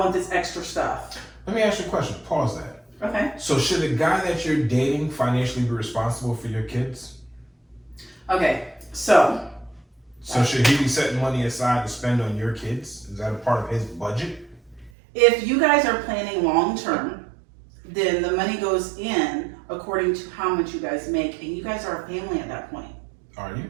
this extra stuff. Let me ask you a question. Pause that. Okay. So should the guy that you're dating financially be responsible for your kids? Okay, so Should he be setting money aside to spend on your kids? Is that a part of his budget? if you guys are planning long term, then the money goes in according to how much you guys make, and you guys are a family at that point. Are you?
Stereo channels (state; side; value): drops out; left; at 14.9 s